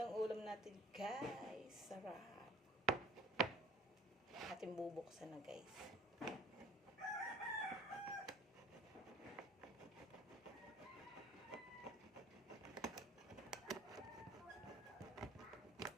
ulam natin, guys. Sarap. Ating bubuksan na, guys.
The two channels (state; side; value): normal; both; correlation 0.50